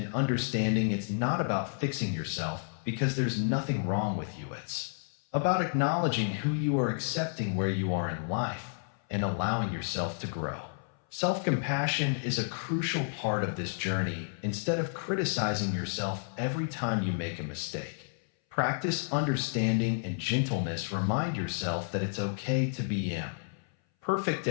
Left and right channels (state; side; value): silent; right; 57 dB below the other